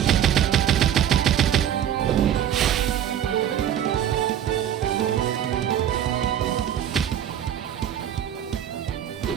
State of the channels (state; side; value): quieter; left; 10.2 dB